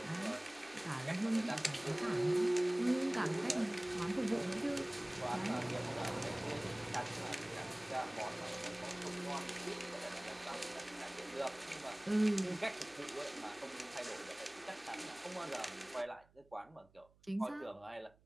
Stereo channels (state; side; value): noise; right; hum, 30 dB below the sound